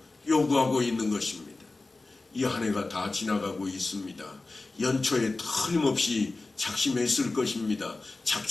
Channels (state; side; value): quieter; right; 3.4 dB